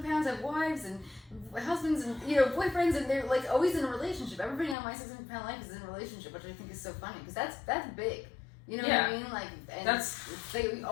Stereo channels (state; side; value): drops out; right; at 4.8 s